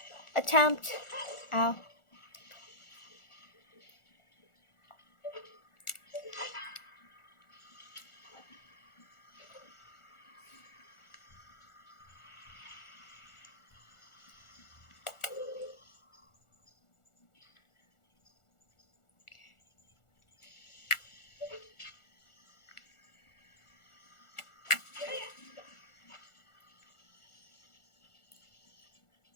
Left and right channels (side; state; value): right; late; 1.4 ms